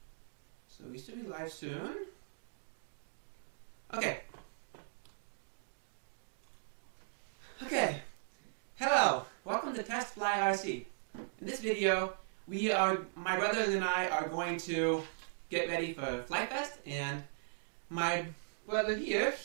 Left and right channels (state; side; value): silent; left; digital silence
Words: So we should be live soon. Okay. Hello. Welcome to Test Fly RC. In this video, my brothers and I are going to get ready for Flite Fest, and my brother here,